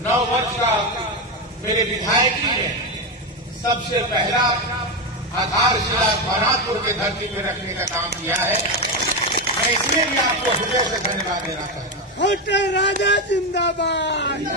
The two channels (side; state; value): both; normal; correlation 0.11